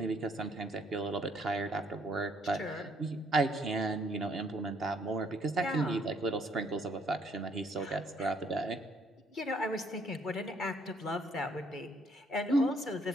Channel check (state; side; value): normal; both; correlation 0.67